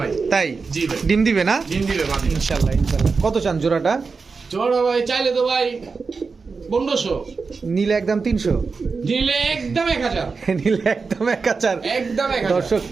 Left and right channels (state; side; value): quieter; left; 4.7 dB